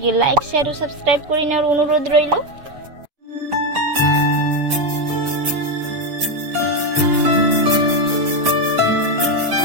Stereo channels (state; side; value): late; left; 7.0 ms